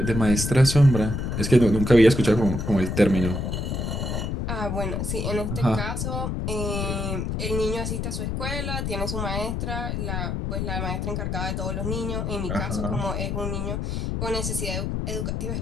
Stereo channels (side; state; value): left; noise; rumble, 2 dB below the sound